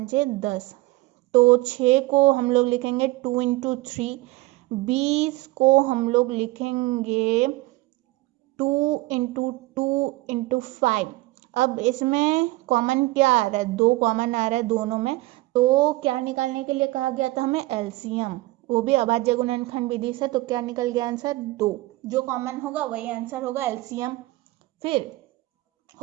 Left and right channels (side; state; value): left; quieter; 19.9 dB